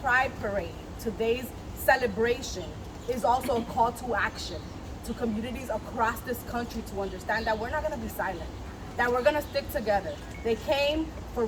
Parade, today's celebration is also a call to action to communities across this country to understand that we're not going to be silent, that we're going to stick together. They came for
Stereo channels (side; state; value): both; identical; correlation 1.00